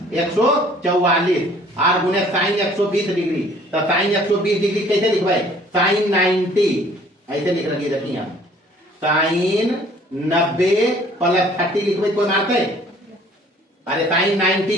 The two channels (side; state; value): both; normal; correlation 0.55